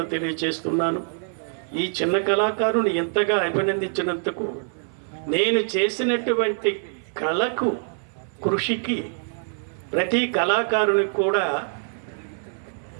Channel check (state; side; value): silent; left; 59 dB below the other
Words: తెలియజేస్తున్నాను. ఈ చిన్న కళాకారుని ఎంతగా అభినందించినందుకు, నేను చేసినటువంటి కళకు కృషికి ప్రతి కళాకారునికి కూడా